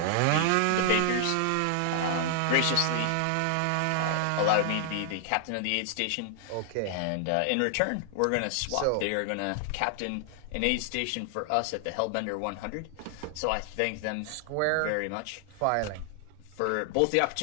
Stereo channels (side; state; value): both; different; correlation 0.00